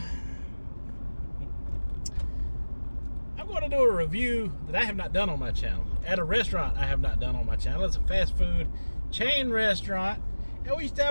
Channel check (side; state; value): both; inverted; correlation -1.00